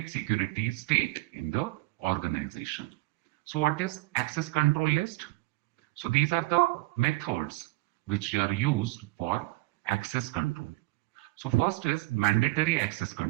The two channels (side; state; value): left; quieter; 20.5 dB